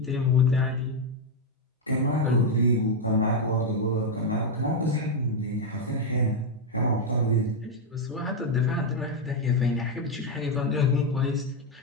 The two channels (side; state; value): both; normal; correlation 0.02